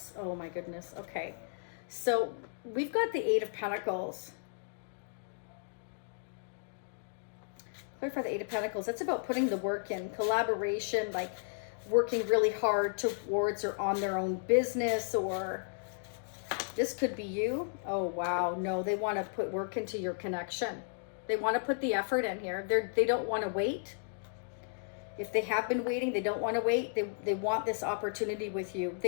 Oh my goodness. Okay. So we've got the Eight of Pentacles. Clarify the Eight of Pentacles. That's about putting the work in, collaboration, like working really hard towards or on their own business, or this could be you. Oh, wow. No, they want to put work into your connection. They want to put the effort in here. They don't want to wait. If they have been waiting, they don't want to wait. They want this opportunity with you.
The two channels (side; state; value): right; silent; digital silence